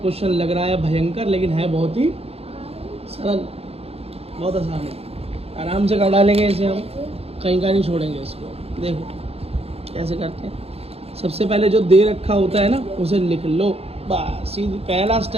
लग रहा है भयंकर, लेकिन है बहुत ही सरल, बहुत आसान है। आराम से कर डालेंगे इसे, हम कहीं का नहीं छोड़ेंगे इसको। देखो कैसे करते हैं। सबसे पहले जो दे रखा होता है ना उसे लिख लो, बस सीधी पहला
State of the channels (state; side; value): late; left; 0.29 ms